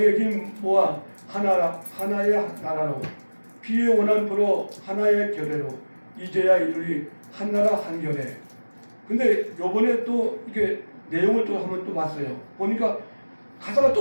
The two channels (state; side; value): inverted; both; correlation -1.00